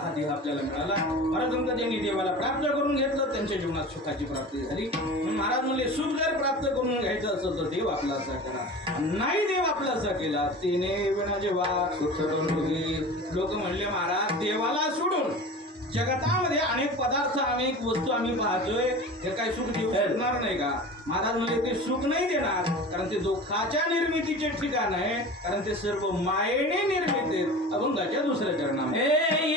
देह आपल्याला मिळाला. महाराज म्हणतात ज्यांनी देवाला प्राप्त करून घेतलं त्यांच्या जीवनात सुखाची प्राप्ती झाली. महाराज म्हणले सुख जर प्राप्त करून घ्यायचं असेल तर देव आपलासा करा. नाही देव आपलासा केला तिने विना जेव्हा सुख लोक म्हणले महाराज देवाला सोडून जगतामध्ये अनेक पदार्थ अनेक वस्तू आम्ही पाहतोय, हे काही सुख देऊ शकणार नाही का? महाराज म्हणजे ते सुख नाही देणार, कारण ते दुःखाच्या निर्मितीचे ठिकाण आहे, कारण ते सर्व मायेने निर्मित आहेत. अभंगाच्या दुसऱ्या चरणामध्ये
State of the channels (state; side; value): normal; both; correlation 0.35